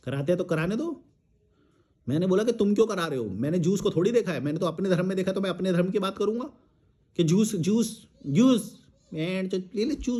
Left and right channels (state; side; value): identical; both; correlation 1.00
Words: कराते हैं तो कराने दो। मैंने बोला कि तुम क्यों करा रहे हो, मैंने जूस को थोड़ी देखा है, मैंने तो अपने धर्म में देखा, तो मैं अपने धर्म की बात करूंगा कि जूस जूस जूस एंड ले ले